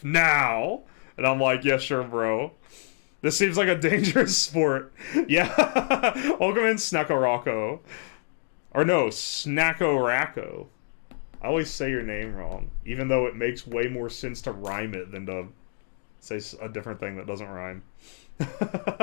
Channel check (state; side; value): silent; right; digital silence